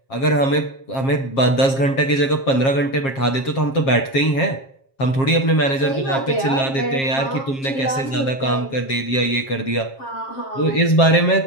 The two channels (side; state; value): right; late; 7.4 ms